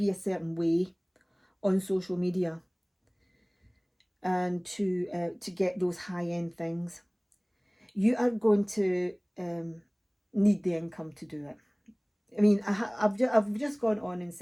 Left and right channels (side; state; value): both; identical; correlation 1.00